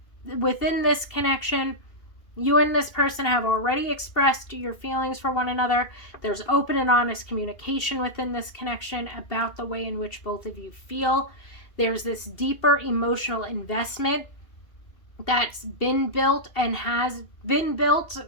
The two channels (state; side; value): late; right; 2.7 ms